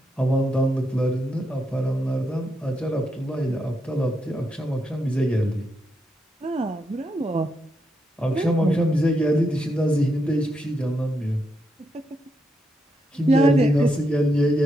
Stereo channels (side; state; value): both; normal; correlation 0.82